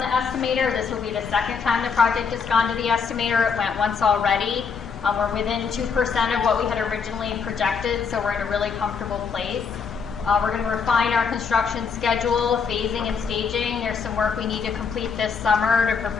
estimator. This will be the second time the project has gone to the estimator. It went once already. We're within 2% of what we had originally projected, so we're in a really comfortable place. We're going to refine our construction schedule, phasing and staging. There's some work we need to complete this summer to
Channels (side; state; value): right; quieter; 5.9 dB